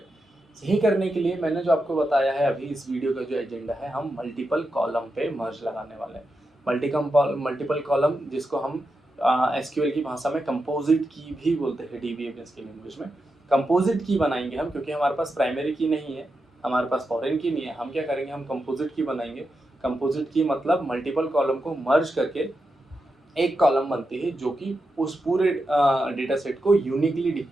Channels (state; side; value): normal; both; correlation 0.88